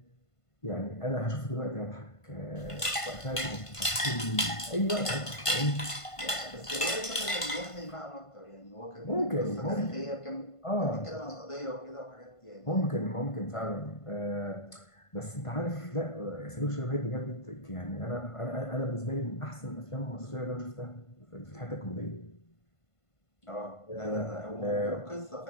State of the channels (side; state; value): right; late; 1.5 ms